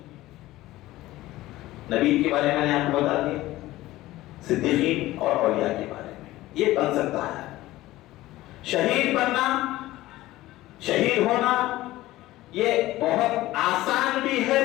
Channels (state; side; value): quieter; right; 16.8 dB